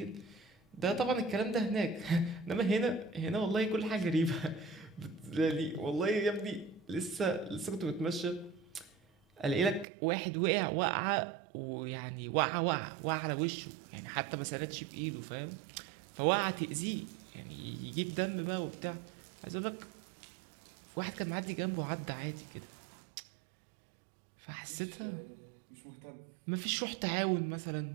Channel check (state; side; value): drops out; left; at 9.9 s